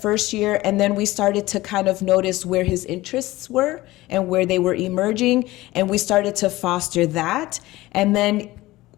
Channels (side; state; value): right; quieter; 18.3 dB